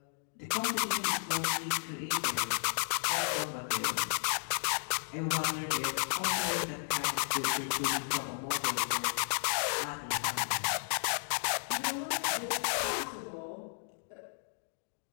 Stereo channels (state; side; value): silent; right; digital silence